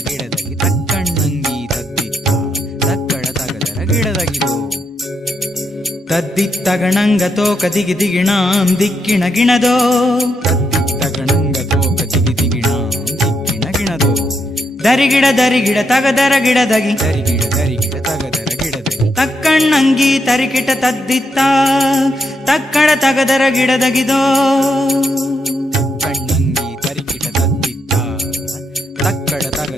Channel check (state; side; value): normal; both; correlation 0.79